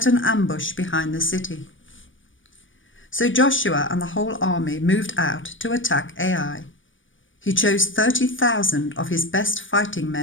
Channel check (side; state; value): right; late; 0.56 ms